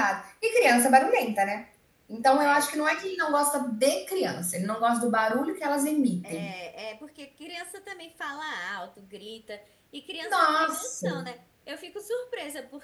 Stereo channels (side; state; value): both; identical; correlation 1.00